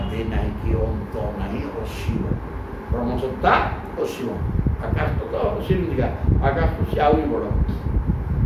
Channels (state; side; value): identical; both; correlation 1.00